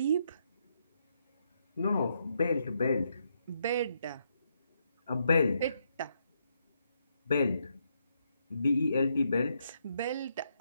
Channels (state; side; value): inverted; both; correlation -0.78